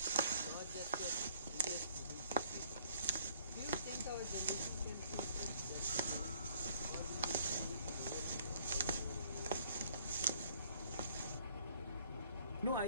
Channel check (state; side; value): inverted; both; correlation -0.60